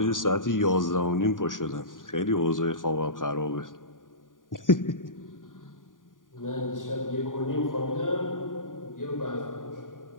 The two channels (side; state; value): right; late; 0.89 ms